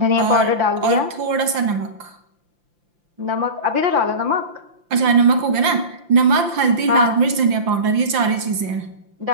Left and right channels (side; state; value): left; late; 5.8 ms